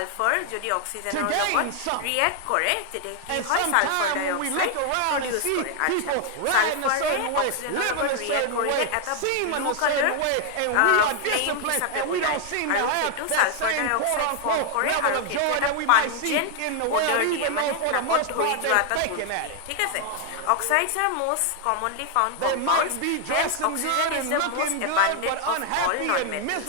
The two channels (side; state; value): both; different; correlation 0.00